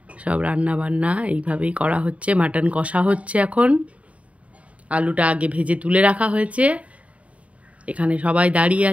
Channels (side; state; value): left; late; 0.065 ms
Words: সব রান্না বান্না এইভাবেই করা হচ্ছে। মাটন কষা হচ্ছে এখন, আলুটা আগে ভেজে তুলে রাখা হয়েছে। এখানে সবাই দাঁড়িয়ে